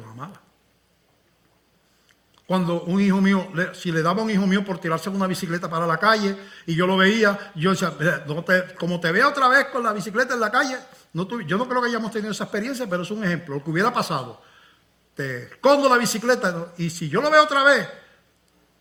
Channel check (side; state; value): both; identical; correlation 1.00